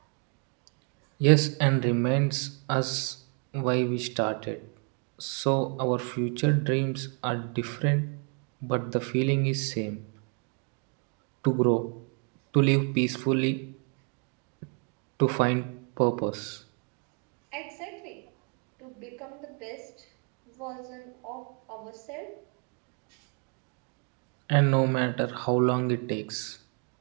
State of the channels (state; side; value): quieter; left; 37.8 dB